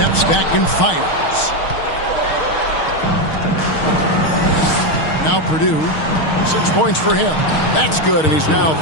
back and fires. Now Purdue, 6 points for him. That's good, and he's now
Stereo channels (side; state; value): right; late; 6.4 ms